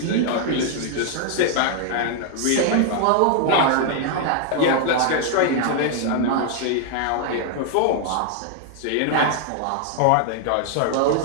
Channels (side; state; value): both; different; correlation 0.00